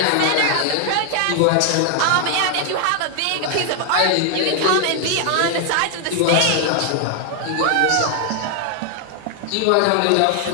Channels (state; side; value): different; both; correlation 0.00